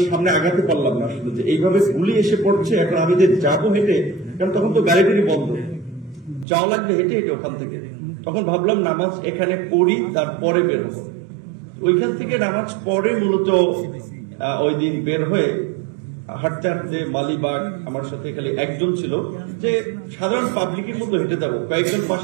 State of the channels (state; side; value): drops out; left; at 6.5 s